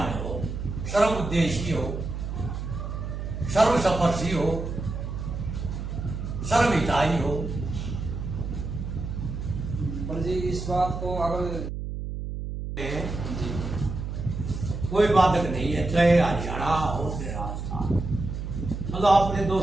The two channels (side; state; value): right; noise; hum, 5 dB below the sound